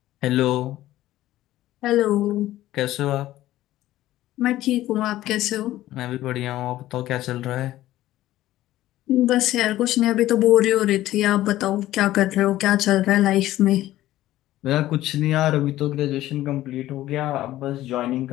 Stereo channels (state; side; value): quieter; right; 14.9 dB